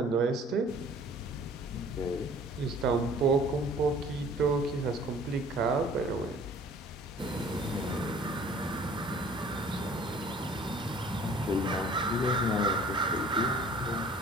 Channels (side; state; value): both; normal; correlation 0.50